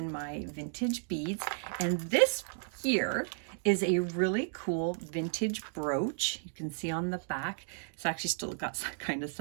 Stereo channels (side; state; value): left; silent; digital silence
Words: my vintage beads. And this here is a really cool vintage brooch. You can see on the back, it's actually still got kind of